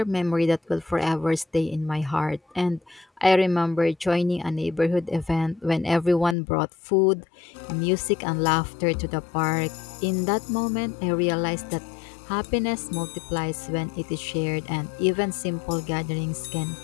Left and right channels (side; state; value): right; drops out; at 6.4 s